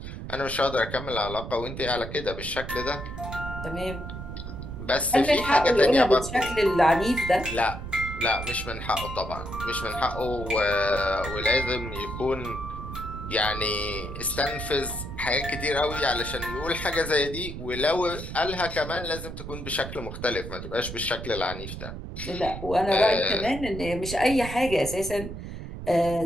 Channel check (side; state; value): right; noise; rumble, 9 dB below the sound